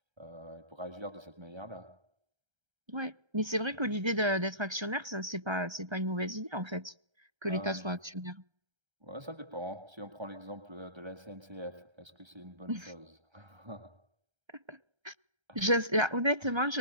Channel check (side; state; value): left; late; 1.3 ms